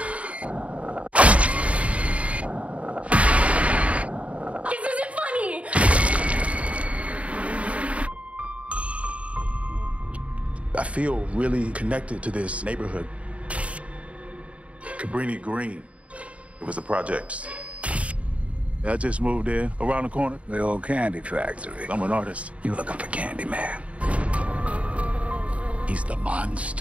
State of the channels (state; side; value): late; left; 0.065 ms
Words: This isn't funny! I feel really connected to this neighborhood. Cabrini Green. It was the projects. I just moved in around the corner. The old candy factory. I'm an artist. You looking for Candyman? He's the